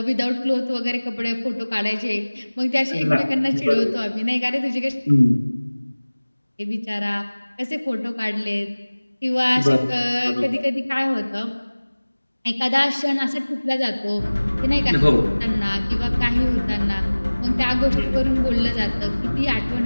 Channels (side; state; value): both; inverted; correlation -1.00